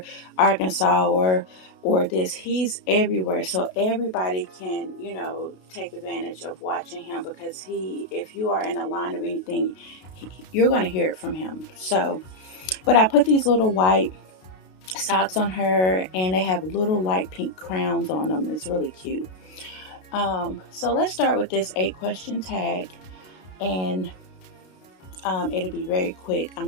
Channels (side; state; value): right; late; 32 ms